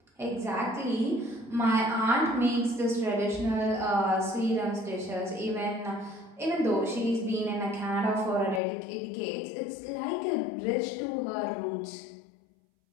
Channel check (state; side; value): drops out; right; at 8.6 s